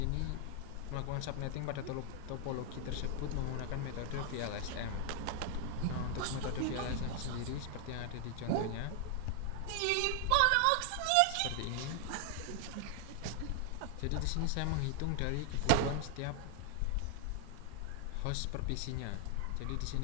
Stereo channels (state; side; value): different; both; correlation 0.00